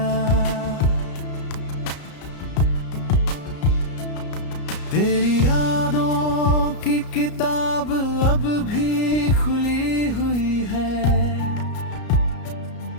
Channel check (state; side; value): late; right; 33 ms